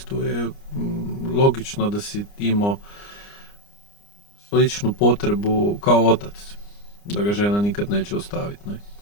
je logično da si imao sličnu potrebu kao otac, da ga žena nikad neće ostaviti.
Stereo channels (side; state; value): right; late; 29 ms